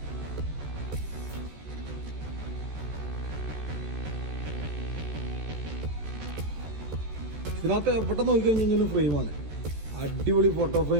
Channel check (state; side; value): late; left; 14 ms